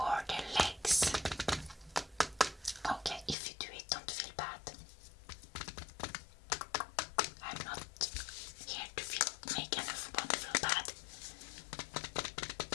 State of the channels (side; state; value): right; drops out; at 3.4 s